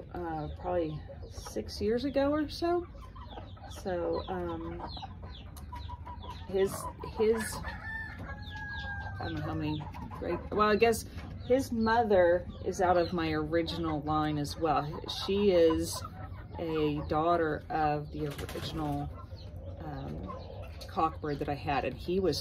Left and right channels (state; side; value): identical; both; correlation 1.00